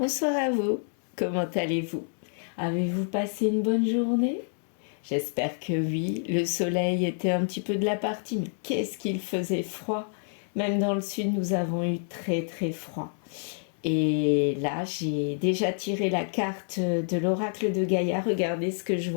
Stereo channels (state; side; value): silent; right; 59 dB below the other